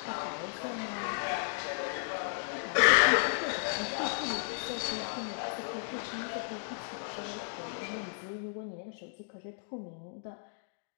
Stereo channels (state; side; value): silent; right; digital silence